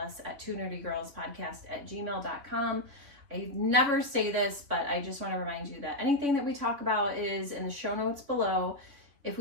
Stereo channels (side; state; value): left; late; 3.4 ms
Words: at twonerdygirlspodcast@gmail.com. I never say this, but I just want to remind you that anything that we talk about is in the show notes below. If